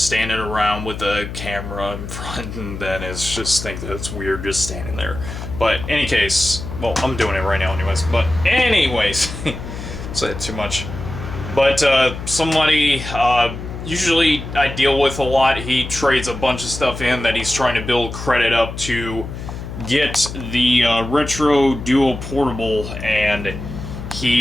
standing around with a camera in front, then it's just think that it's weird just standing there. But any case, well, I'm doing it right now anyways, but anyways, said too much. But somebody, usually I deal with a lot, he trades a bunch of stuff in that he's trying to build credit up to get the Retro Duo Portable, and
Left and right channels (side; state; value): left; noise; hum, 9 dB below the sound